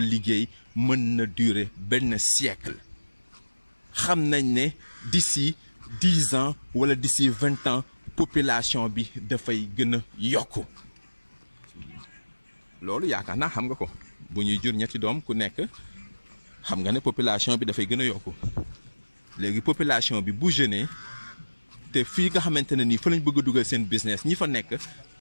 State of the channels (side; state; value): both; inverted; correlation -1.00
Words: mën na durer benn siècle xam nañ ne d'ici 10 ans wala d'ici 20 ans population bi dafay gën a yokku loolu yaakaar naa xam nga ko bu ñuy jur ñetti doom ku nekk xam nga ne population bi dafay gën a yokku léegi population bi bu jeune te fii nga xamante ne nii fa lañ bëgg a dugal seen business ñi fa nekk